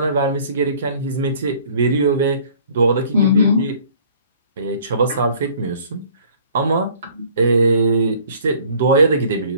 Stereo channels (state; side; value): inverted; both; correlation -0.54